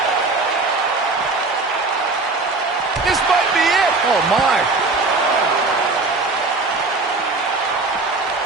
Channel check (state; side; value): quieter; left; 3.6 dB